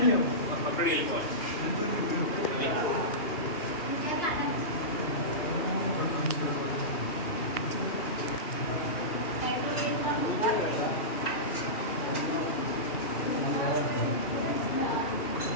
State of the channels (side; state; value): right; late; 2.7 ms